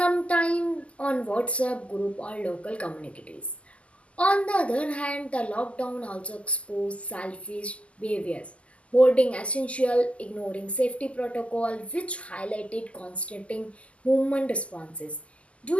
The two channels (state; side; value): late; right; 0.061 ms